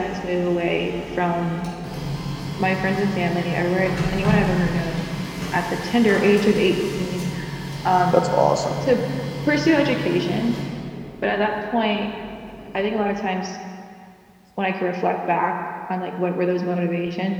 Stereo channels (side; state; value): both; identical; correlation 1.00